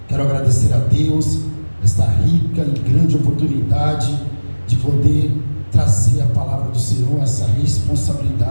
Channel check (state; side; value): inverted; both; correlation -1.00